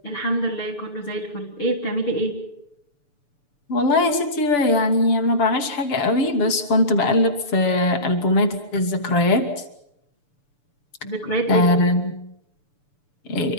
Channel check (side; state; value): right; late; 6.9 ms